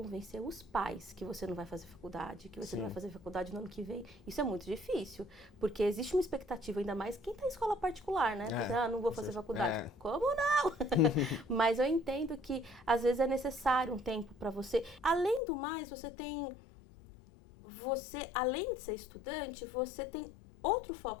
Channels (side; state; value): right; drops out; at 15.4 s